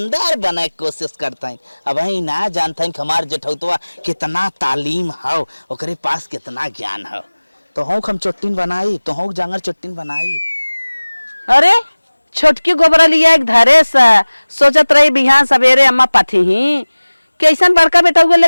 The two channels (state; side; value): inverted; both; correlation -1.00